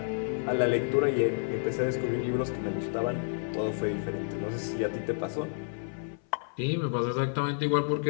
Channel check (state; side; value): silent; right; 55 dB below the other